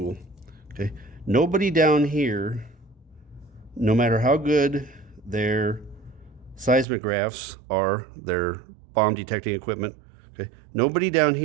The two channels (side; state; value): left; drops out; at 6.9 s